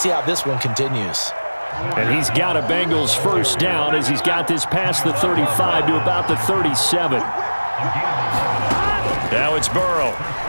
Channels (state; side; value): inverted; both; correlation -1.00